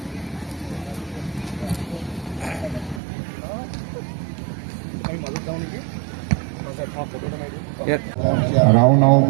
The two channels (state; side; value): drops out; left; at 3.0 s